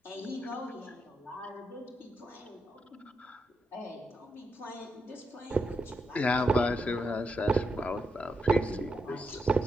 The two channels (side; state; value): both; normal; correlation 0.83